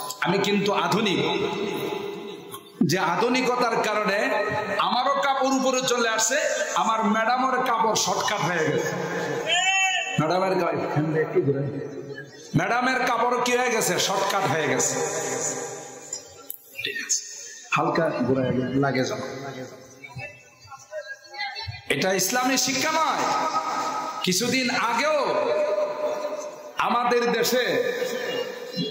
আমি কিন্তু আধুনিক। যে আধুনিকতার কারণে আমারও কাপড় উপরে চলে আসছে, আমার ম্যাডামের কাপড় শর্টকাট হয়ে গেছে। ম্যাডামের কাপড় কি হয়ে গেছে? শর্টকাট হয়ে গেছে। ঠিক আছে, হালকা লাগে যাবে। এটা ইসলামী শিক্ষা নয়। কিছুদিন আগেও আমাদের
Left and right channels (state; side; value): identical; both; correlation 1.00